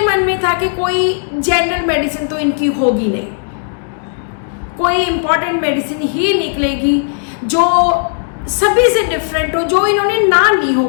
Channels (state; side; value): silent; right; 70 dB below the other